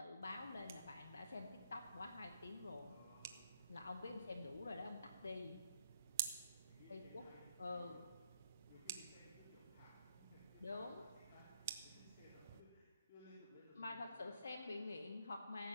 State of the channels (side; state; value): both; inverted; correlation -0.70